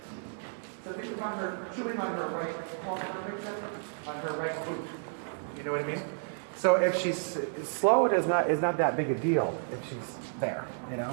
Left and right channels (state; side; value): silent; left; digital silence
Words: So think of her chewing on her right palm, on her right boot. You know what I mean? So if she's slow, it is not that big a deal if she's there,